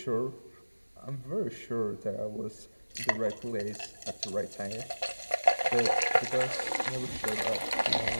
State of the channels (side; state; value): both; inverted; correlation -1.00